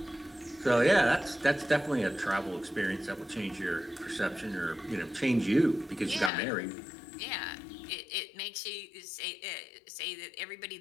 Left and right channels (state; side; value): drops out; right; at 6.3 s